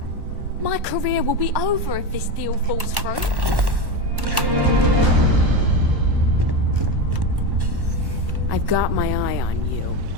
My career will be over if this deal falls through. I've got my eye on you.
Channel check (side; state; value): left; late; 1.1 ms